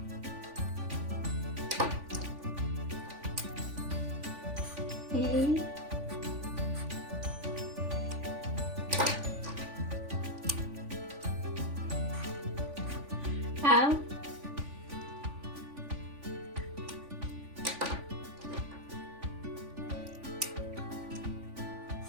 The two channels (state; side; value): late; left; 3.5 ms